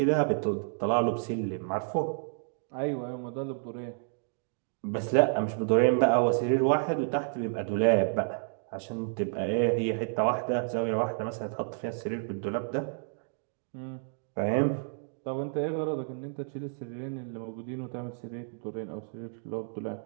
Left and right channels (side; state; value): left; silent; digital silence